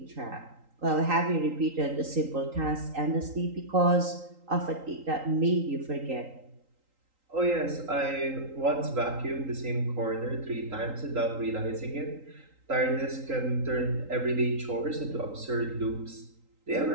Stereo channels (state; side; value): late; left; 3.8 ms